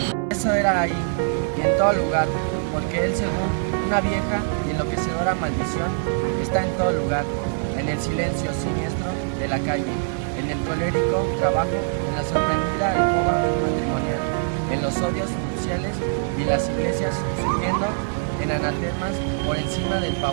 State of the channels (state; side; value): silent; left; digital silence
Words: Eso era ahí, y en todo lugar, porque Él, según una vieja y enloquecedora maldición, está en todo lugar, en el silencio siniestro de la calle, en el colérico trabajo, en la sorprendida alcoba matrimonial, en los odios nupciales y en las iglesias surgiendo en anatemas por encima del